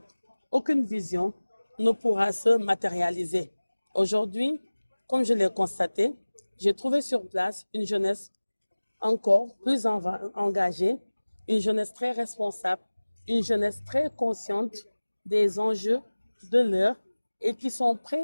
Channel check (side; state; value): both; inverted; correlation -1.00